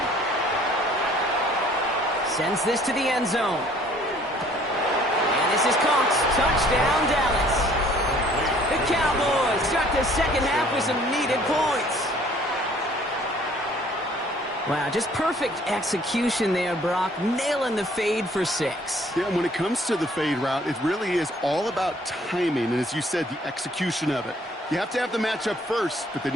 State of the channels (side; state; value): both; normal; correlation 0.57